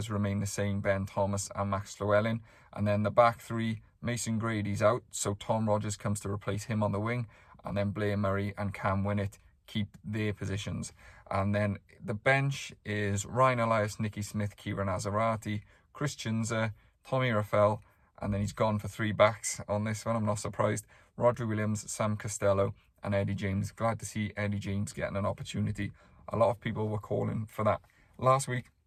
remain the same, Ben Thomas and Max Llewellyn. And then the back three, Mason Grady's out, so Tom Rogers comes to replace him on the wing, and then Blair Murray and Cam Winnett keep their positions. And then the bench is Ryan Elias, Nicky Smith, Kieran Azarati, Chris Chinza, Tommy Raffel, and then he's gone for 3 backs on this one. I'm not surprised. Rodri Williams, Sam Costello, and Eddie James. Glad to see Eddie James getting an opportunity. A lot of people were calling for that last week,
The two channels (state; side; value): identical; both; correlation 1.00